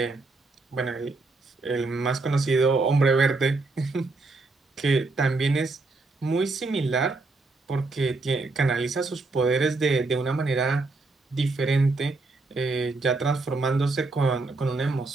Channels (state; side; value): quieter; left; 3.5 dB